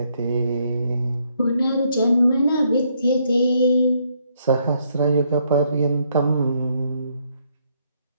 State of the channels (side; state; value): both; inverted; correlation -0.72